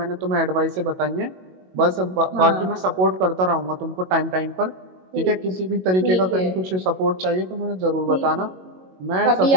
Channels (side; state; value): left; late; 22 ms